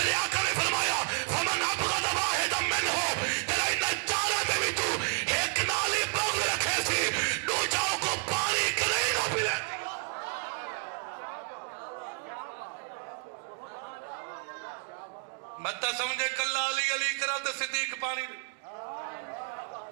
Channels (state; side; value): quieter; left; 39.5 dB